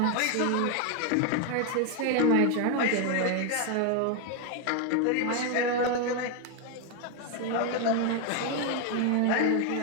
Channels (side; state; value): both; different; correlation 0.01